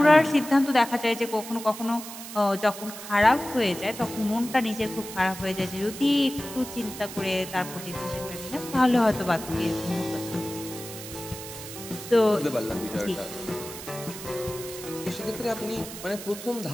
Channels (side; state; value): right; noise; hiss, 11 dB below the sound